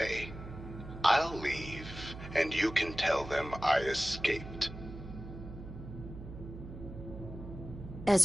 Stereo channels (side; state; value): right; noise; hum, 12 dB below the sound